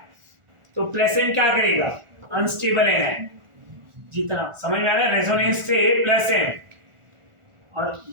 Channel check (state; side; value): late; left; 1.4 ms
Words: तो प्लस एम क्या करेगा? अनस्टेबल है। जितना समझ में आ रहा है, रेजोनेंस से प्लस एम। और